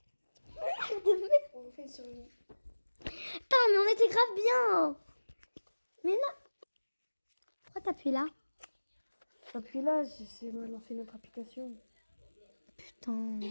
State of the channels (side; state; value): both; inverted; correlation -1.00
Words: On fait une survie. Putain, mais on était grave bien. Mais non. Pourquoi t'appuies là? Appuie là, c'est lancer notre application. Putain.